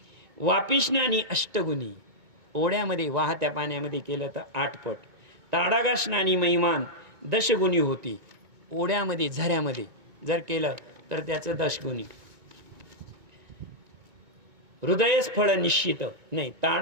वापिस्नानी अष्टगुणी, ओढ्यामध्ये वाहत्या पाण्यामध्ये केलं तर 8 पट. ताडागास्नानी महिमान 10 गुणी होती, ओढ्यामध्ये झऱ्यामध्ये जर केलं तर त्याचं 10 गुणी. हृदयस फळ निश्चित नाही,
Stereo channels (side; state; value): left; late; 2.2 ms